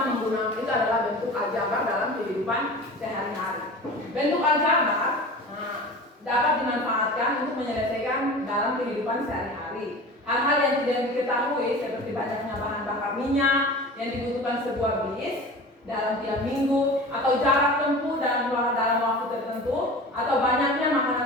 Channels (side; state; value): both; normal; correlation 0.36